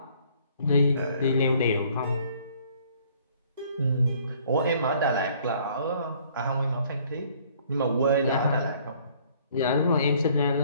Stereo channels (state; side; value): inverted; both; correlation -0.59